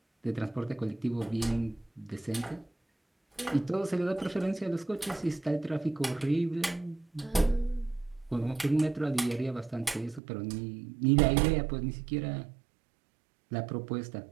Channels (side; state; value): left; drops out; at 10.2 s